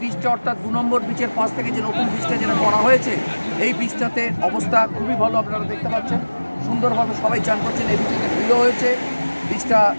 বীজটা অর্থাৎ 2 নম্বর বীজের পাশ থেকে যে নতুন বীজটা যেটা করা হয়েছে, এই বীজটাতে অবস্থা খুবই ভালো, আপনারা দেখতে পাচ্ছেন। সুন্দরভাবে সবাই চান করছেন। এই বীজটাকে ধুলো হয়েছে, বীজটা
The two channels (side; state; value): both; inverted; correlation -1.00